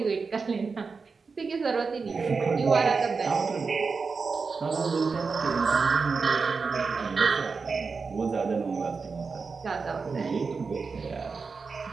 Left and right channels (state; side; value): quieter; left; 4.8 dB